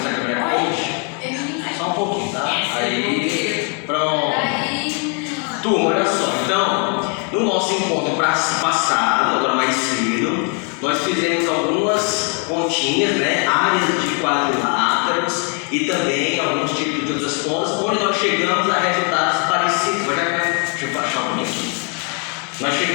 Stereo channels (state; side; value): quieter; right; 38.9 dB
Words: câmera é hoje. Só um pouquinho, tá? Aí, pronto. Turma, olha só, então, no nosso encontro passado, agora mais cedo, nós fizemos algumas continhas, né? Áreas de quadriláteros e também alguns tipos de outras contas, onde nós chegamos a resultados parecidos. Deixa eu baixar um pouquinho aqui. Nós